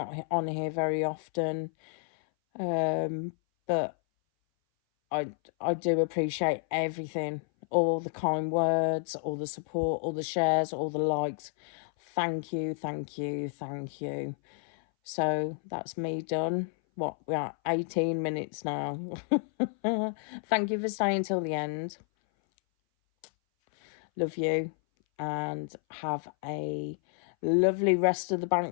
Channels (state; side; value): silent; right; 57 dB below the other